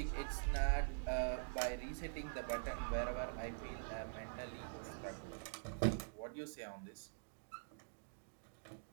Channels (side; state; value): left; silent; digital silence